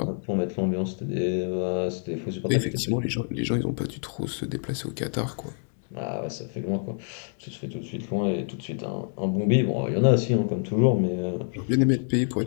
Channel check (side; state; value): right; silent; 60 dB below the other